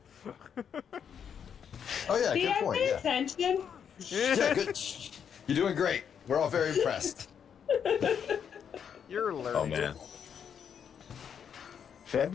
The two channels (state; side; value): quieter; right; 7.8 dB